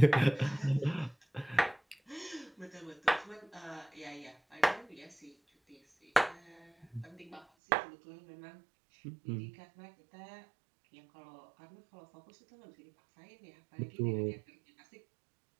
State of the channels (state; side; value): drops out; left; at 7.5 s